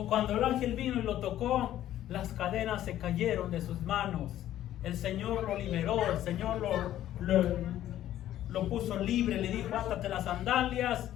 cuando el ángel vino y lo tocó, las cadenas se cayeron de sus manos. El Señor lo liberó, el Señor lo puso libre. Le dijo: átate las sandalias,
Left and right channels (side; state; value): right; quieter; 12.6 dB